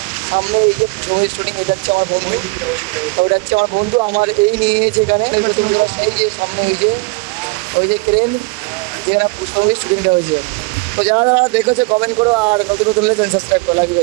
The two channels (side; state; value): left; quieter; 28.4 dB